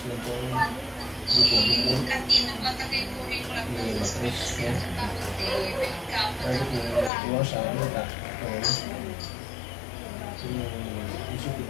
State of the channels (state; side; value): drops out; right; at 7.1 s